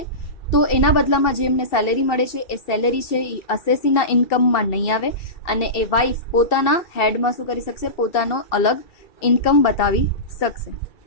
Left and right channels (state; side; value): late; right; 2.7 ms